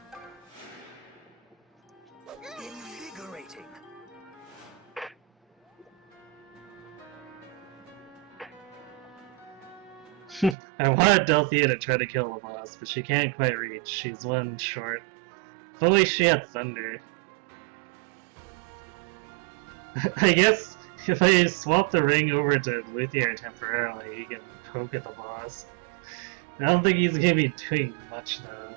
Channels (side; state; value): left; drops out; at 10.6 s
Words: Invigorating. I wanted Delthea to try to kill the boss, but she can't quite reach. She's one short. If only she had thunder. I guess if I swap the ring over to Luthier temporarily, he can poke at the boss. I don't think he's gonna be doing much